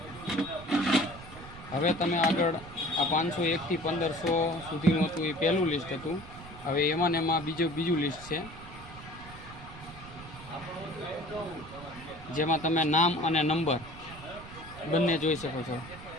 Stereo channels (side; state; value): right; noise; rumble, 16 dB below the sound